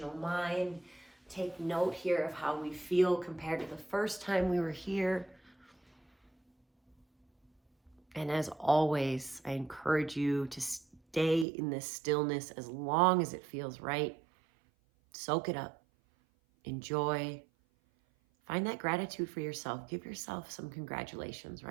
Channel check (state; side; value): drops out; left; at 11.5 s